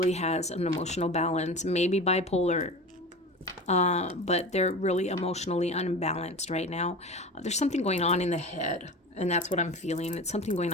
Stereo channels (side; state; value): both; normal; correlation 0.32